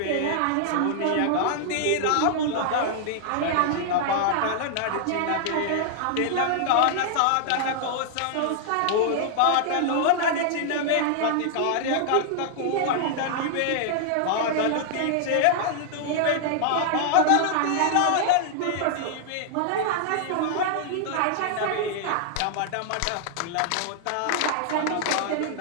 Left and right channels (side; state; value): both; different; correlation -0.01